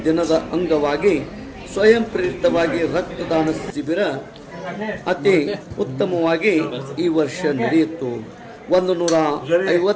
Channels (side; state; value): both; identical; correlation 1.00